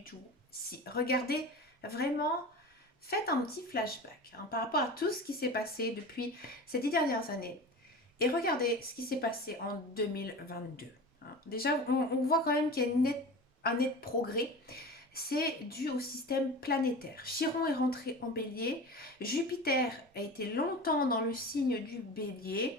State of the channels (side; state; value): both; normal; correlation 0.32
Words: tout. Si, regardez vraiment. Faites un petit flashback par rapport à tout ce qui s'est passé depuis ces 10 dernières années et regardez ce qui s'est passé en 2022. Déjà, on voit quand même qu'il y a un net progrès. C'est dû au système planétaire. Chiron est rentré en bélier. Jupiter a été longtemps dans le signe du